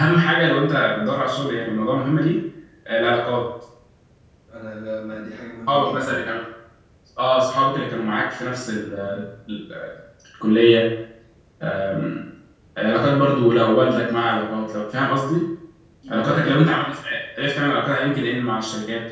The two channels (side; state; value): both; identical; correlation 1.00